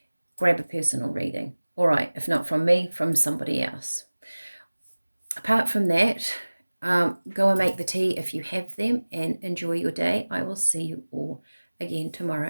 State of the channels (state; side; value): inverted; both; correlation -1.00